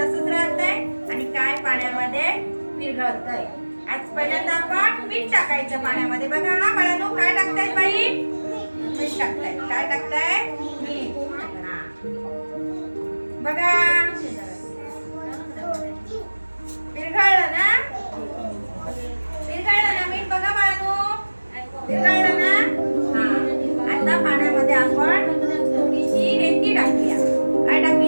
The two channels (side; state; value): both; inverted; correlation -1.00